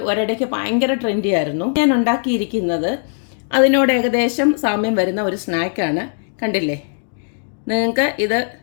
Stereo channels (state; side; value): silent; right; digital silence